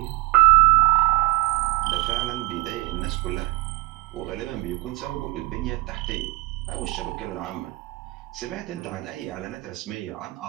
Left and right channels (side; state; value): left; quieter; 22.2 dB